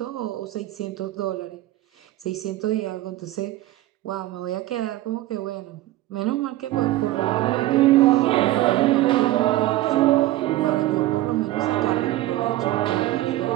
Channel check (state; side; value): quieter; left; 16.0 dB